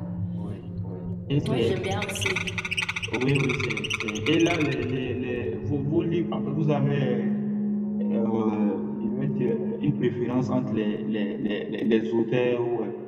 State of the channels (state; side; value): identical; both; correlation 1.00